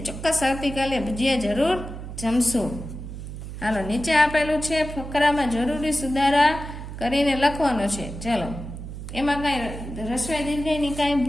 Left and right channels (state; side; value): noise; right; hum, 9 dB below the sound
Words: ચોક્કસ આવતીકાલે ભજીયા જરૂર જમશું. હાલો, નીચે આપેલું છે ફકરામાં જરૂરી સુધારા કરીને લખવાનો છે. ચલો, એમાં કાંઈ રસ્વ દીર્ઘની કાંઈ